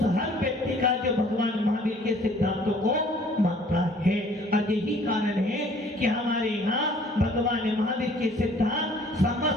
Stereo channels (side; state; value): both; normal; correlation 0.56